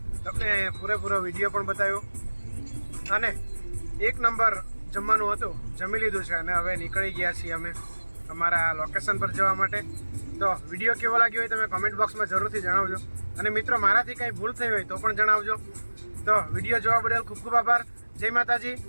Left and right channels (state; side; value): inverted; both; correlation -1.00